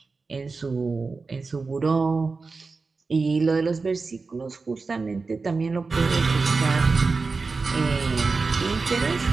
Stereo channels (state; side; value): quieter; left; 4.2 dB